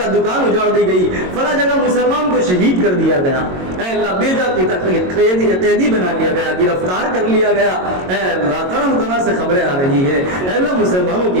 دکان اجاڑ دی گئی، فلاں جگہ مسلمان کو شہید کر دیا گیا، اے اللہ بیجا قیدی بنا لیا گیا، گرفتار کر لیا گیا، اے اللہ طرح طرح سے خبریں آ رہی ہے، اے اللہ مسلمانوں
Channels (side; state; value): left; late; 22 ms